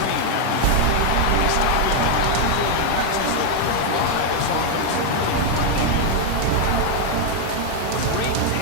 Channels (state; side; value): different; both; correlation 0.01